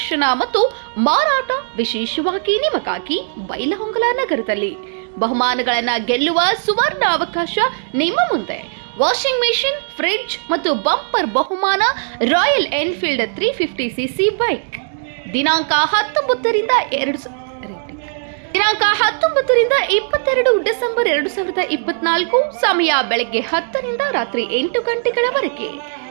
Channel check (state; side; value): silent; left; digital silence